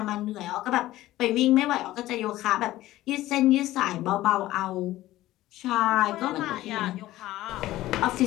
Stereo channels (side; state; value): right; quieter; 15.8 dB